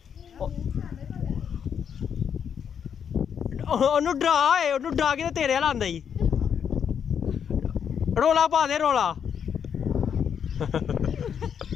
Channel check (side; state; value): right; quieter; 7.8 dB